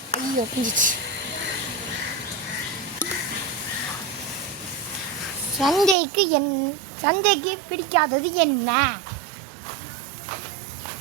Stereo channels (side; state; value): left; drops out; at 6.0 s